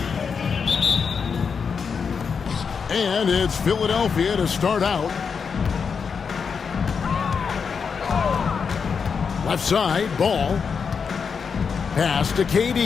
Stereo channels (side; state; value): right; quieter; 6.0 dB